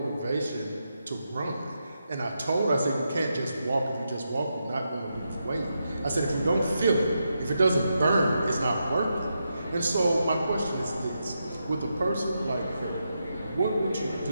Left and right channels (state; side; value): inverted; both; correlation -0.85